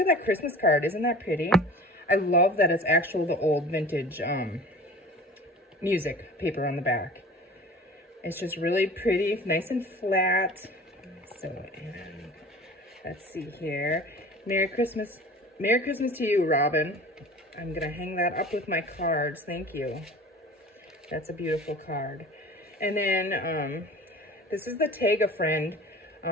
that Christmas card. Isn't that pretty? I love that it's actual the old vintage music paper on the back. It's just really pretty, nice and flat. So, and let's see here. Merry Christmas to you, Robin. I'm gonna hang that up with my cards. Thank you. That's a beautiful card. And then this is the Tag a Friend,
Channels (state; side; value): normal; both; correlation 0.41